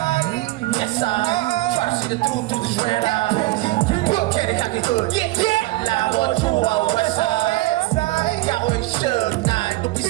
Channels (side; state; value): left; quieter; 19.1 dB